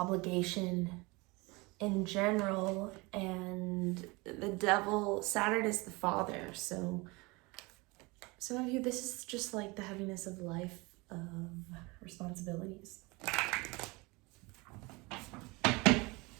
in general, and the Devil, Saturn is the father. So some of you, this is just like the heaviness of life, of responsibilities.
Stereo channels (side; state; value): left; quieter; 25.3 dB